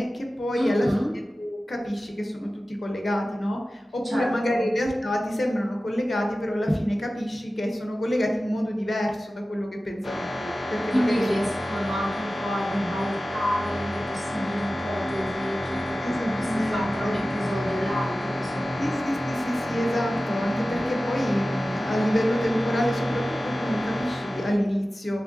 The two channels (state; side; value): normal; both; correlation 0.96